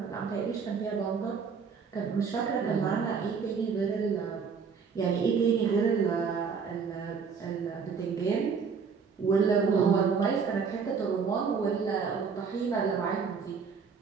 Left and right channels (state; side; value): quieter; left; 5.8 dB